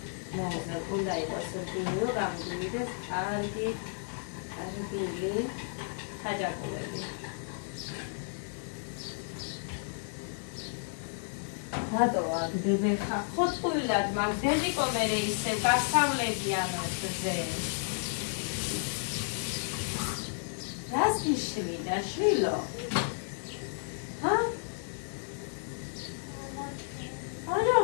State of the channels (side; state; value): right; silent; digital silence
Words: მოუძნა, უნდა იყოს რკინიო გამგვიდეს კარგი ხაჭაპურები. რატო აგდები ხა? ხოწყვილად მაგდები კომერე ისე გასავლებიან ზე. რას გიშვიდა, შვილო? ჰა?